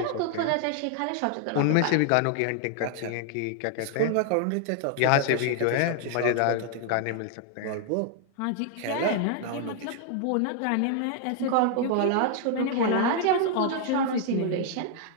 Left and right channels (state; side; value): different; both; correlation 0.00